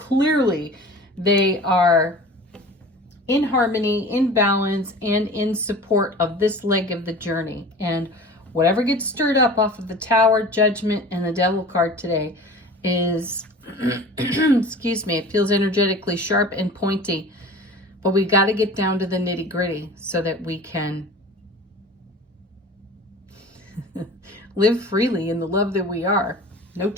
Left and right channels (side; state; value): both; normal; correlation 0.40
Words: they are in harmony, in balance, and in support of this leg of the journey. And whatever gets stirred up off of the Tower, Judgment, and the Devil card today is, excuse me, it feels energetically sharp and pointy, but we got to get down to the nitty gritty so that we can live freely in the love that we are. No